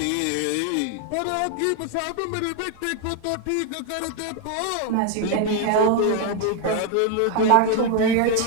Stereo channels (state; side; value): different; both; correlation 0.00